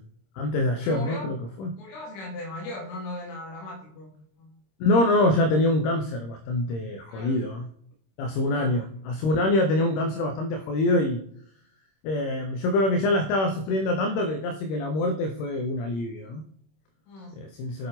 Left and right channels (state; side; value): late; right; 26 ms